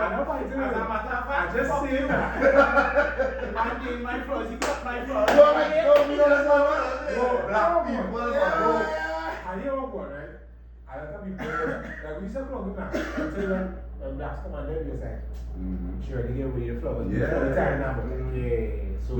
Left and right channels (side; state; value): both; identical; correlation 1.00